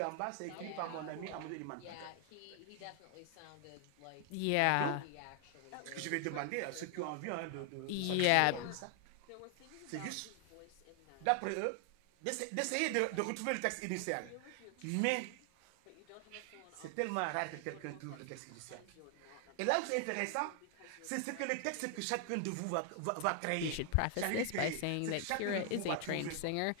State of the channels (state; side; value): different; both; correlation 0.00